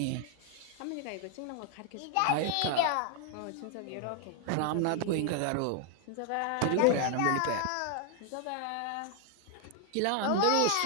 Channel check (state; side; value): different; both; correlation 0.00